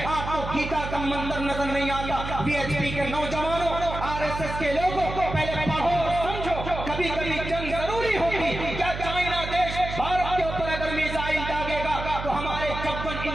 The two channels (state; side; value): noise; right; hum, 7 dB below the sound